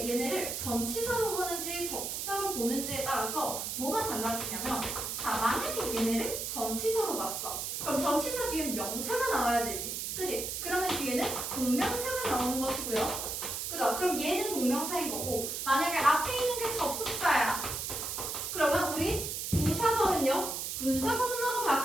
얘네를 전치사로 보는지 접속사로 보는지에 따라서 뭐가 달라지냐면, 자, 만약에 얘네를 전치사로 봤어. 그럼 전치사 뒤에 명사가 나와야 되지. 그지? 그러면 뒤에는 동명사가 나오는 것이고요. 그죠? 그럼 얘는 동명사인 거고, 만약에 앞에 있는 게 접속사야. 그러면 우리 부사절은요, 분사구문으로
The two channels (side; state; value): right; noise; hiss, 4 dB below the sound